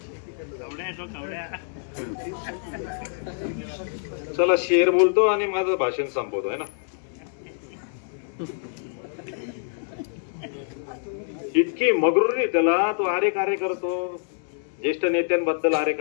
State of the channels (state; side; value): silent; right; digital silence